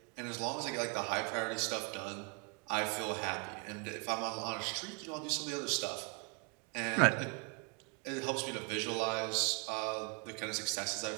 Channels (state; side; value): quieter; left; 34.2 dB